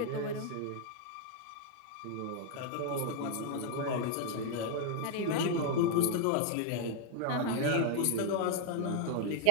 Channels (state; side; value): different; both; correlation 0.00